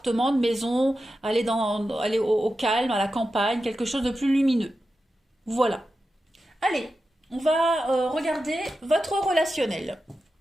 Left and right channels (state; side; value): normal; both; correlation 0.91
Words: de maison, aller au calme, à la campagne, quelque chose de plus lumineux. Voilà. Allez, on va regarder votre relationnel.